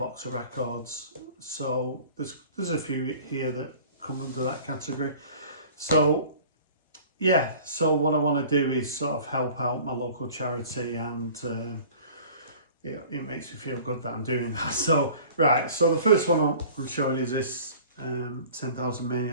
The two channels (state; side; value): inverted; both; correlation -0.46